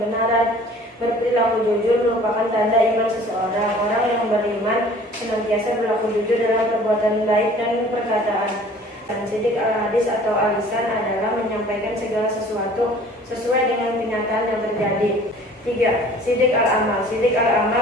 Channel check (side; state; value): both; normal; correlation 0.49